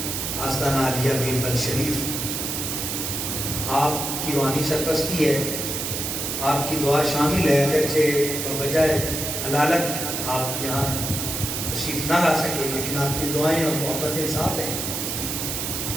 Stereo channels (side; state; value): right; noise; hiss, 3 dB below the sound